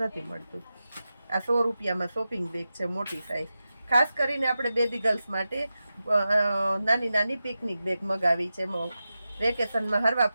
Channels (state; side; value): inverted; both; correlation -0.92